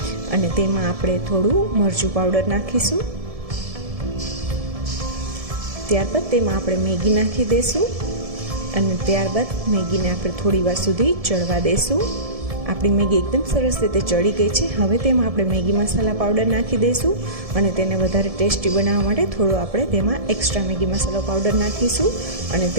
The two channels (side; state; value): left; late; 1.7 ms